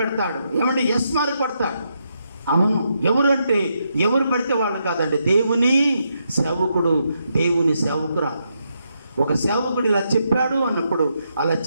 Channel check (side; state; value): both; inverted; correlation -0.80